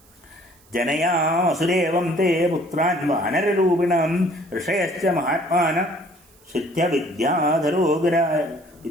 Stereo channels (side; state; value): right; noise; hiss, 30 dB below the sound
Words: ജനയാമസുരേവം തേ പുത്രാൻ വാനരരൂപിണം ഋഷയശ്ച മഹാത്മാന